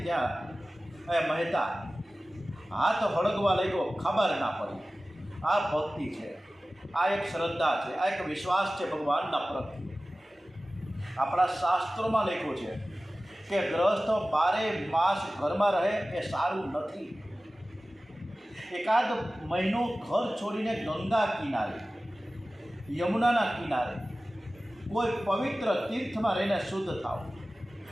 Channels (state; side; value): normal; both; correlation 0.96